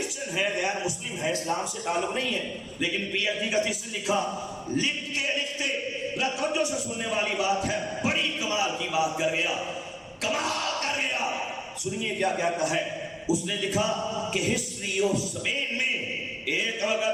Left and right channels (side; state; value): both; identical; correlation 1.00